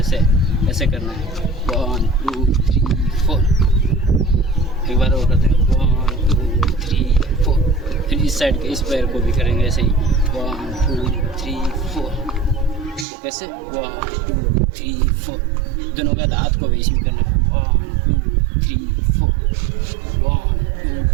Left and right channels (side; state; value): left; drops out; at 13.1 s